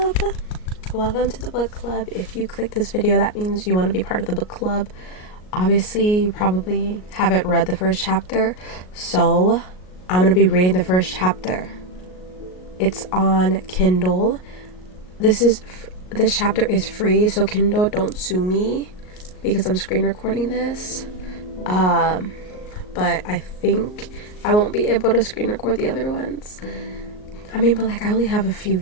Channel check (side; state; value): right; late; 38 ms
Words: Welcome to the book club. If you click this video, that means you want to be part of the book club. Obviously, you probably haven't read the first chapter, so I'm gonna be reading the first chapter. It's on Kindle. This chapter is free, so Kindle, don't sue me because I'm screen recording this. But I think I won't be able to screen record the other ones. I mean, but like, I only have a few